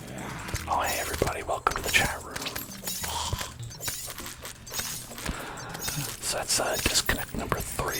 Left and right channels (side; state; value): both; identical; correlation 1.00